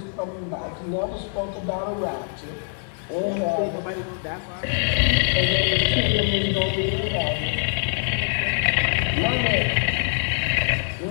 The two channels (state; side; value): silent; right; 63 dB below the other